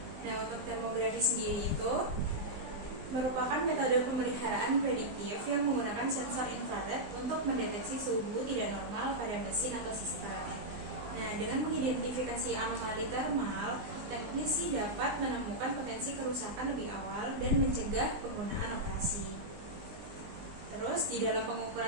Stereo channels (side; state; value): left; late; 20 ms